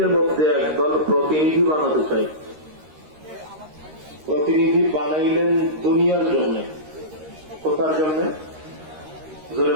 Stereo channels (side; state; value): left; late; 13 ms